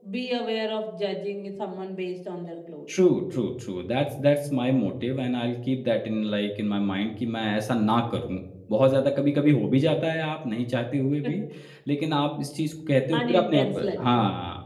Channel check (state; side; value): identical; both; correlation 1.00